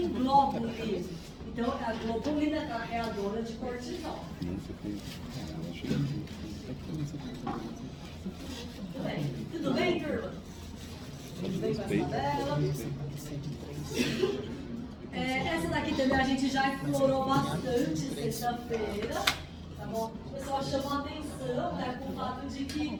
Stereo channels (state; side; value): identical; both; correlation 1.00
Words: globulin. Então é a globulina carreadora de cortisol. Tudo bem? Tudo bem, turma? Tudo bem com essa tabela? Essa daqui também a gente já explorou bastante sexta-feira, tá bom? O pessoal chamou a atenção, né, com o fato de que